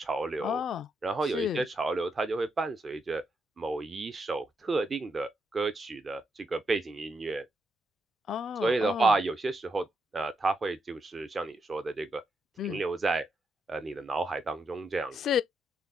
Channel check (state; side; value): normal; both; correlation 0.81